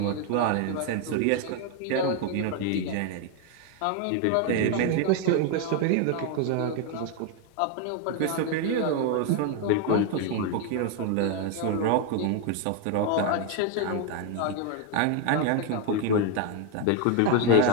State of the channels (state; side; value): different; both; correlation 0.01